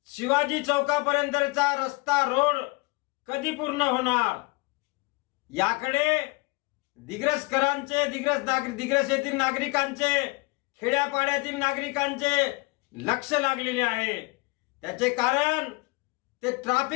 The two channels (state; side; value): quieter; right; 25.5 dB